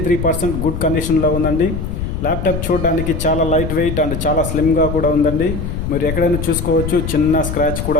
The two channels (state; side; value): noise; left; rumble, 4 dB below the sound